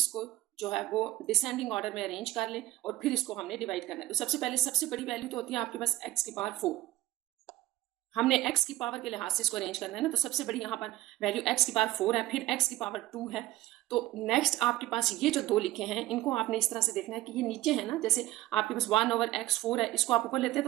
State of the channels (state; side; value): quieter; left; 15.7 dB